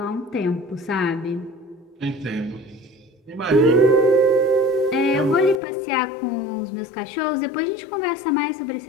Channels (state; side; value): drops out; right; at 5.6 s